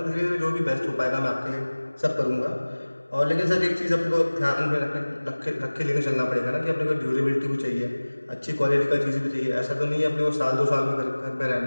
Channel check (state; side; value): inverted; both; correlation -1.00